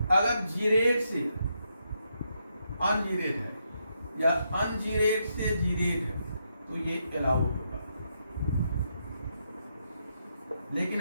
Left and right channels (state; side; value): inverted; both; correlation -0.80